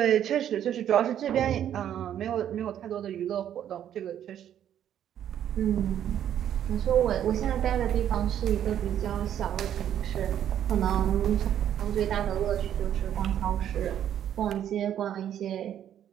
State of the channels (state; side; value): quieter; left; 10.3 dB